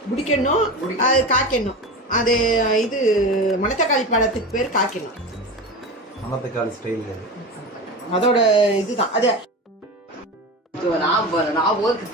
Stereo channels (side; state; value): both; normal; correlation 0.27